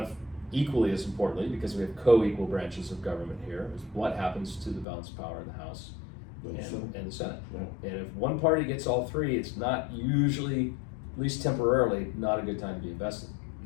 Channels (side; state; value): right; drops out; at 4.9 s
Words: equally as importantly, because we have co-equal branches of government here, is what happens to the balance of power in the House and the Senate. Yeah. And if one party gets all three, it's not usually, at least temporarily, not a good time to be invested.